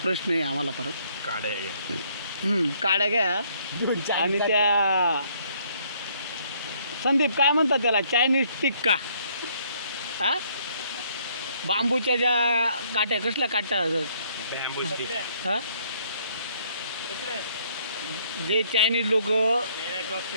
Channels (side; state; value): both; inverted; correlation -0.65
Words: प्रश्न आहे आम्हाला परत. काड्या घ्या. काड्या घ्या आणि त्या संदीप काय म्हणतात त्याला चायनीज टिक्का हा बांबूच्या ज्या काट्या कसल्या काट्या बॅम्बू स्टिक. हा जे चायनीज लोक